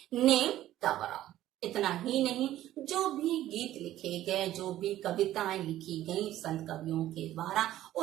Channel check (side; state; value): left; quieter; 13.7 dB